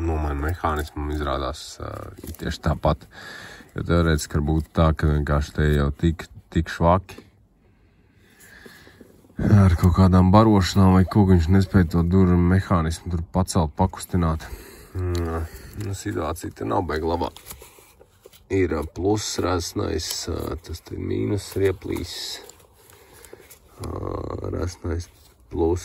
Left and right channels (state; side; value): identical; both; correlation 1.00